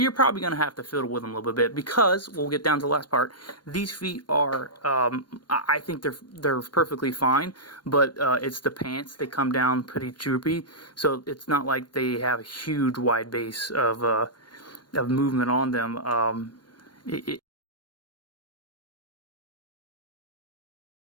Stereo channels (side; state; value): right; late; 0.71 ms